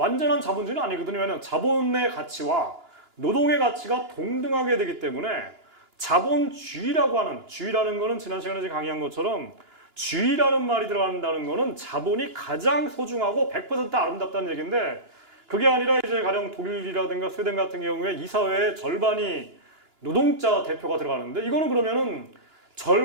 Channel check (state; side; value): late; left; 2.9 ms